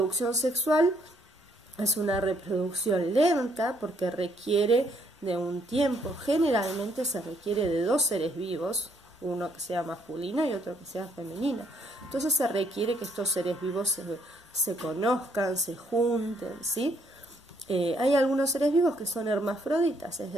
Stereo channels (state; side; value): normal; both; correlation 0.70